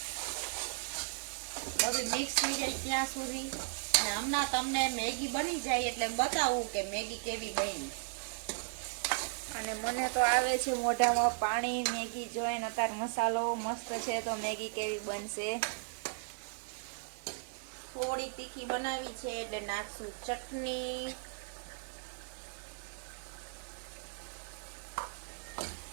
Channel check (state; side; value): silent; left; 54 dB below the other